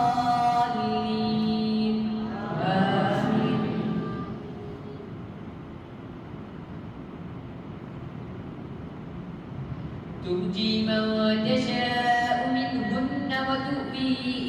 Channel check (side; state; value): both; identical; correlation 1.00